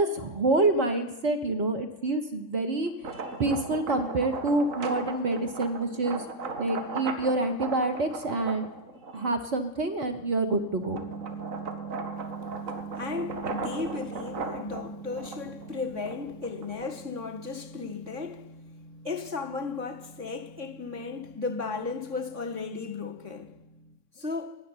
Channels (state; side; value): late; left; 4.2 ms